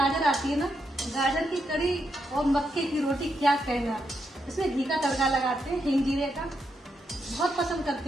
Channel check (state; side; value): normal; both; correlation 0.82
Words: आती है ना, गाजर की कढ़ी और मक्के की रोटी, क्या कहना। इसमें घी का तड़का लगाते हैं, हिंग जीरे का, बहुत पसंद